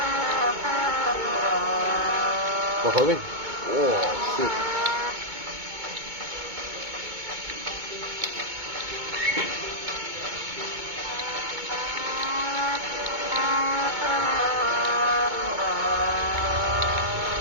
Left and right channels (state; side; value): late; left; 2.2 ms